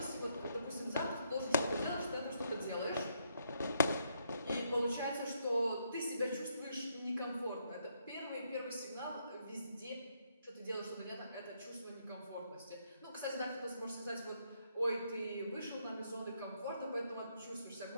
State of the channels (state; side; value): inverted; both; correlation -0.75